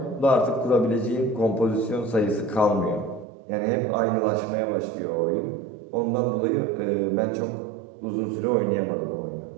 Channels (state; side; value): drops out; left; at 3.2 s